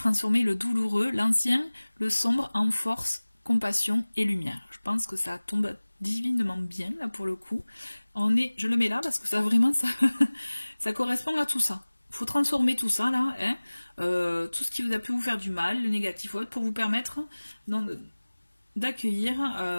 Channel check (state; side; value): inverted; both; correlation -1.00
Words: le douloureux, l'ancien, le sombre en force, compassion et lumière. Je pense que ça tombe divinement bien là pour le coup. Je le mets là parce que ça vraiment ça correspond à tout ça. Il faut transformer tout ça là, hein, tout ce qui vous a pu vous faire du mal, le négatif autre, pour vous permettre d'accueillir